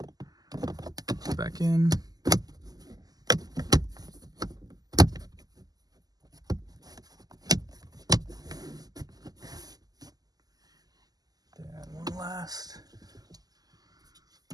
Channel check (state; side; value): late; left; 0.18 ms